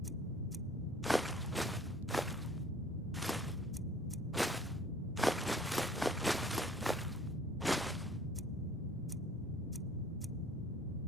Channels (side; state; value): both; normal; correlation 0.53